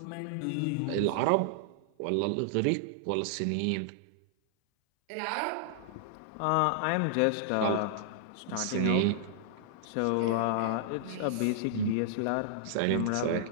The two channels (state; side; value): different; both; correlation -0.01